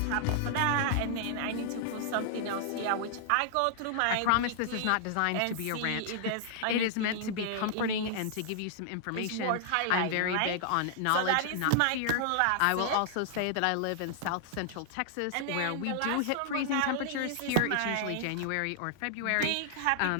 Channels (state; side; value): different; both; correlation -0.01